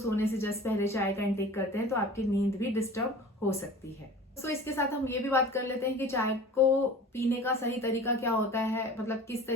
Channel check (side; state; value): both; normal; correlation 0.41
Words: से जस्ट पहले चाय का इंटेक करते हैं तो आपकी नींद भी डिस्टर्ब हो सकती है। तो इसके साथ हम ये भी बात कर लेते हैं कि चाय को पीने का सही तरीका क्या होता है, मतलब किस